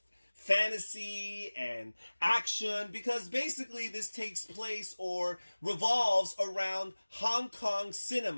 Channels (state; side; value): inverted; both; correlation -1.00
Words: fantasy and action because basically this takes place or revolves around Hong Kong